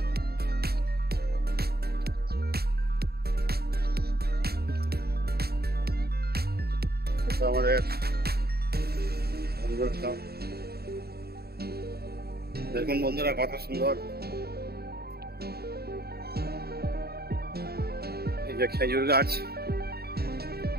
আমাদের দেখুন বন্ধুরা কত সুন্দর এই যে খেজুর গাছ।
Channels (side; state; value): left; late; 0.46 ms